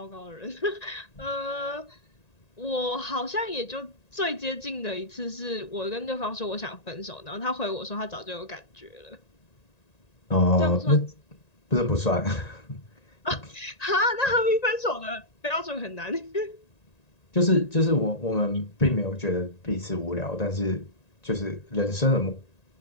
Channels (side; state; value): right; late; 1.9 ms